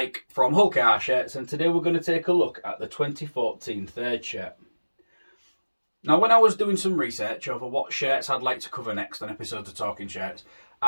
from Hull KR Shirts, and today we're going to take a look at the 2014 third shirt. Now, when I was doing some research over what shirts I'd like to cover next on episodes of Talking Shirts,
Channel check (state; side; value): inverted; both; correlation -1.00